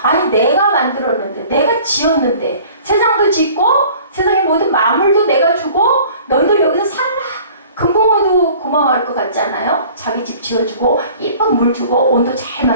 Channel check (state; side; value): inverted; both; correlation -0.49